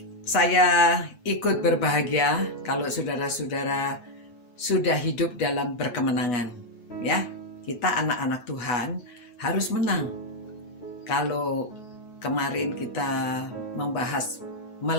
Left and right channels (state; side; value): late; right; 9.2 ms